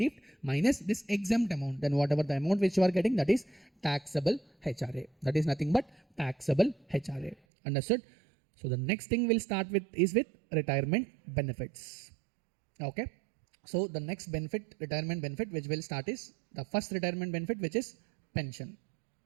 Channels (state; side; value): drops out; left; at 7.4 s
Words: minus this exempt amount. Then whatever the amount which you are getting, that is taxable HRA. That is nothing but taxable HRA. Understood? So the next thing we'll start with is with retirement benefits. Okay. So the next benefit, retirement benefit, which will start is the first retirement benefit, which is pension.